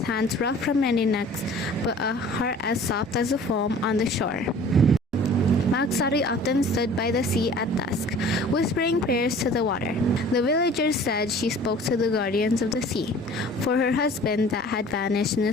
hands rough from many necks, but a heart as soft as the foam on the shore. Maksari often stood by the sea at dusk, whispering prayers to the water. The villagers said she spoke to the guardians of the sea, for her husband that had vanished in a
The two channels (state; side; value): normal; both; correlation 0.47